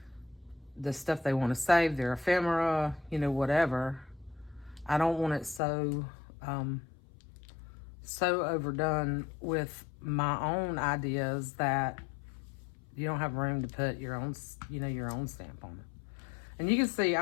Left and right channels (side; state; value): right; drops out; at 5.6 s